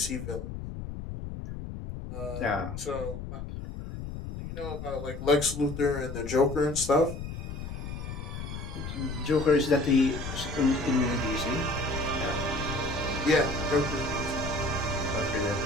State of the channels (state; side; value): noise; left; rumble, 8 dB below the sound